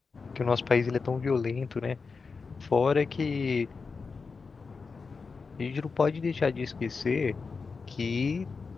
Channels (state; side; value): quieter; right; 4.8 dB